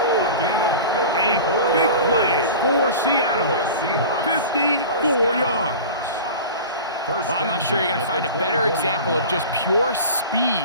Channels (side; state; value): both; inverted; correlation -0.35